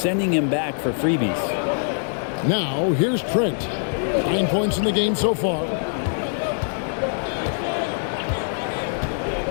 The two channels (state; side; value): silent; right; digital silence